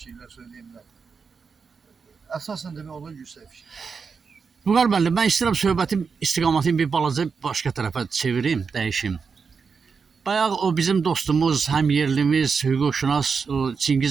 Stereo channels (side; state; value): left; quieter; 5.5 dB